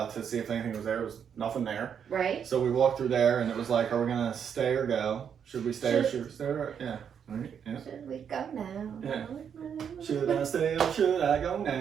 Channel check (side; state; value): left; quieter; 7.8 dB